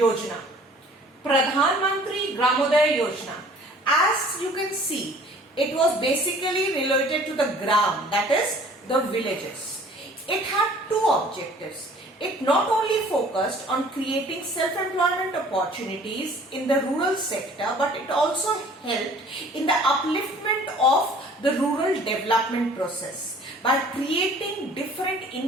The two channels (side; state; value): both; normal; correlation 0.52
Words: Pradhan Mantri Gramodaya Yojana. As you can see, it was basically related to the gram, that is the villages. It had two objectives. It not only focused on creating self-employment opportunities in the rural sector, but it also helped in the upliftment of the rural development process by creating different